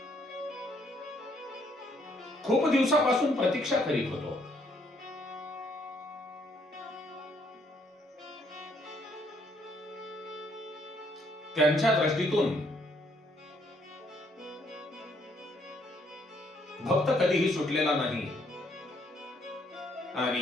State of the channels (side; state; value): both; normal; correlation 0.69